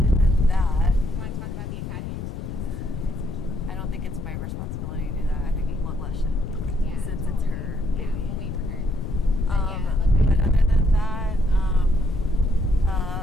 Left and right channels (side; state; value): left; noise; rumble, 6 dB below the sound